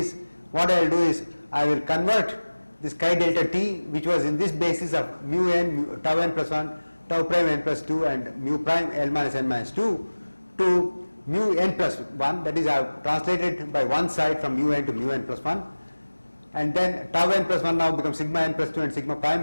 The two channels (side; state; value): both; inverted; correlation -1.00